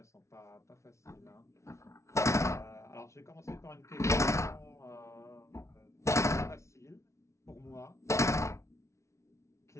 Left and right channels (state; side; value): late; right; 0.14 ms